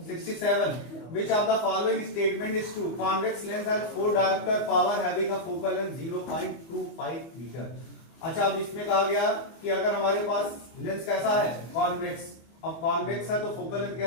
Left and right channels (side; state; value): right; late; 24 ms